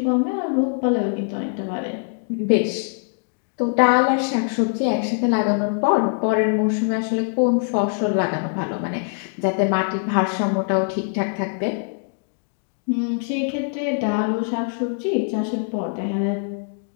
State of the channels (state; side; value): silent; right; 64 dB below the other